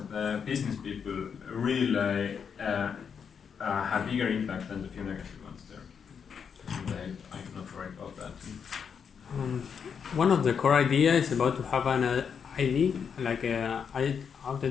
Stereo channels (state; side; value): quieter; right; 6.9 dB